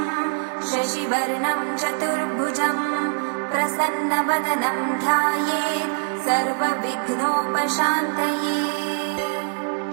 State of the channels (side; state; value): left; silent; digital silence